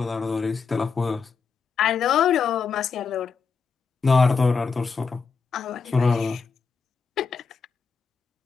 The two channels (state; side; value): quieter; right; 5.2 dB